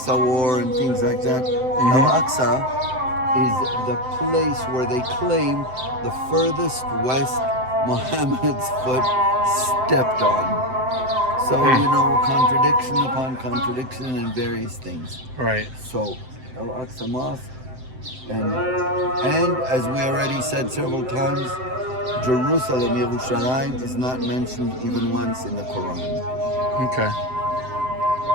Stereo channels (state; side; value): late; left; 7.8 ms